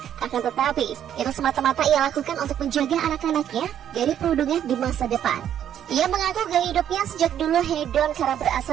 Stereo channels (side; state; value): left; quieter; 10.1 dB